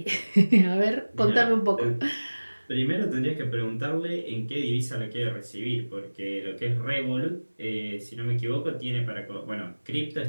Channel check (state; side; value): inverted; both; correlation -1.00